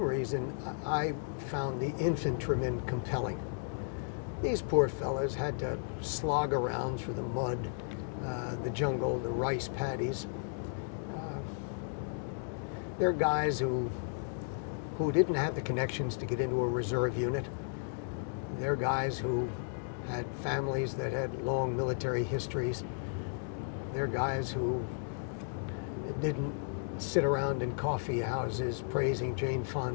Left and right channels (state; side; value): silent; right; digital silence